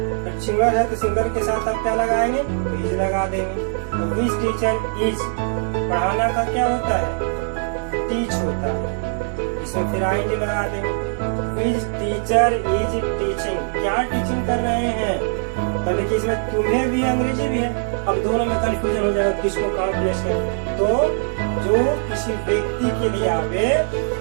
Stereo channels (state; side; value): silent; left; 63 dB below the other